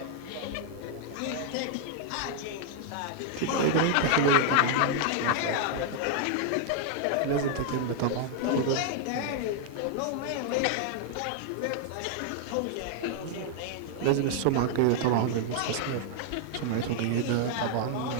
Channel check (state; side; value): different; both; correlation 0.00